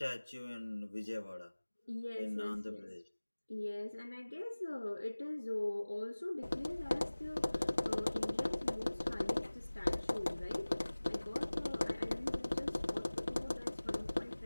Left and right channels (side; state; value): both; inverted; correlation -1.00